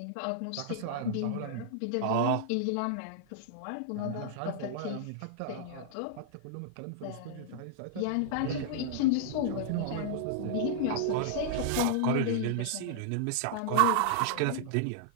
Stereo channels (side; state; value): both; different; correlation -0.01